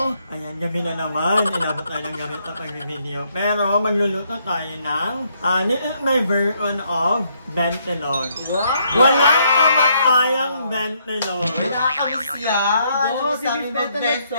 ayan, gabi na naman, inabot tayo ng gabi sa pag-video. Pero, magluluto tayo ng, this is my version of bentelon. Wow! Walang kamatayang bentelon. Nakakamiss yan! Oh, Sa aming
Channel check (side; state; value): both; inverted; correlation -0.72